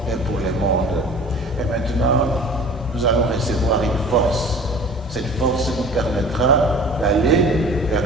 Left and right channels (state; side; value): normal; both; correlation 0.43